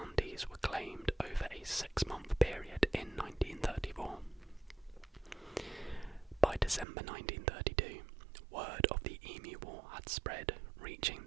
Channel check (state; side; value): drops out; left; at 6.9 s